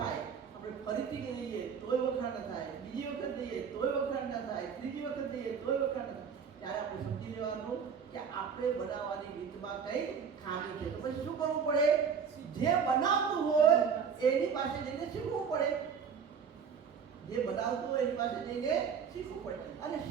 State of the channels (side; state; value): left; quieter; 6.7 dB